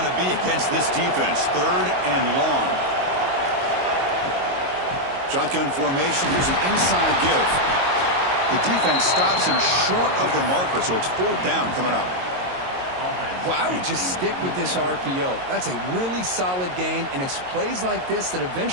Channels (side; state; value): left; late; 22 ms